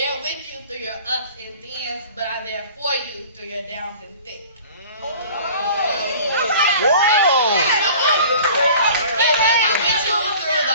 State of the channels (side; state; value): both; inverted; correlation -0.45